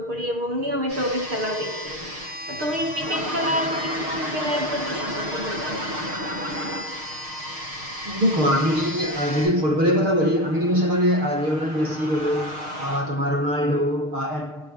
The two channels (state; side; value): late; left; 6.5 ms